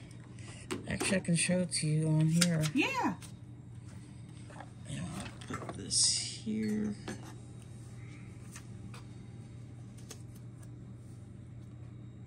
Actually, I can show it to you on here. Yeah. And I'll put this here.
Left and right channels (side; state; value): both; identical; correlation 1.00